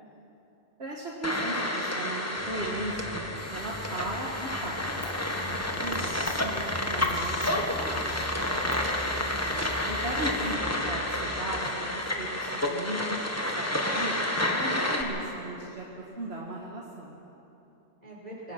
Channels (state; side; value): normal; both; correlation -0.06